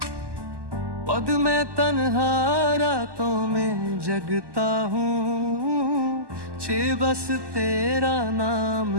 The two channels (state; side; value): late; left; 1.2 ms